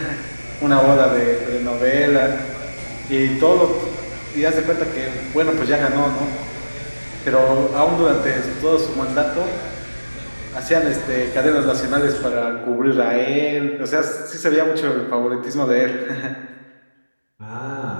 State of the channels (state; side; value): inverted; both; correlation -1.00